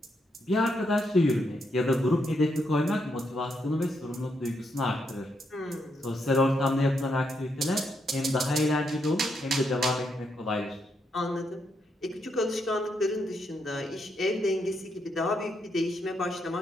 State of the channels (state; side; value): normal; both; correlation 0.79